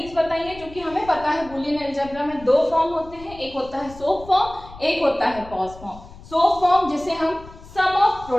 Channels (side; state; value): left; noise; rumble, 18 dB below the sound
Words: बताई है। जो कि हमें पता है बूलियन अलजेब्रा में 2 फॉर्म होते हैं, एक होता है सोप फॉर्म, एक होता है पॉज फॉर्म। सोप फॉर्म जिसे हम सम ऑफ